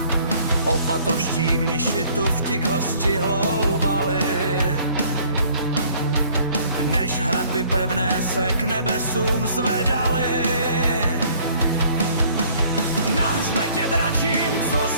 Opatoští mniši tu vtik hosti hloubali, než hradby pevné se k nebesům zvedaly. Na hřbetě dračím, co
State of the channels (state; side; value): inverted; both; correlation -0.58